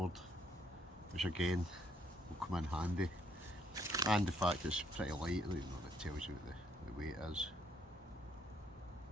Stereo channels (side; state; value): both; normal; correlation 0.70